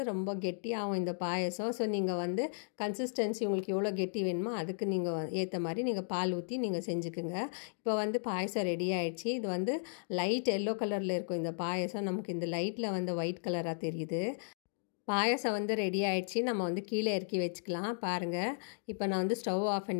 ரொம்ப கெட்டியாகும் இந்த பாயசம். ஸோ நீங்கள் வந்து கன்சிஸ்டன்சி உங்களுக்கு எவ்வளோ கெட்டி வேணுமோ அதுக்கு நீங்கள் ஏற்ற மாதிரி நீங்கள் பால் ஊற்றி நீங்கள் செஞ்சுக்குங்க. இப்போ வந்து பாயசம் ரெடி ஆகிடுச்சு. இது வந்து லைட் எல்லோ கலரில் இருக்கும் இந்த பாயசம். நமக்கு இந்த லைட்டில் வந்து ஒயிட் கலராக தெரியுது. பாயசம் வந்து ரெடி ஆகிடுச்சு. நம்ம வந்து கீழே இறக்கி வச்சுக்கலாம். பாருங்கள், இப்போ நான் வந்து ஸ்டவ் ஆஃப்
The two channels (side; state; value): right; silent; digital silence